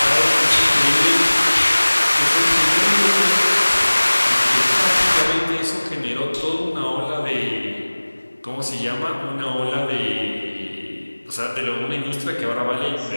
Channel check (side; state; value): both; inverted; correlation -1.00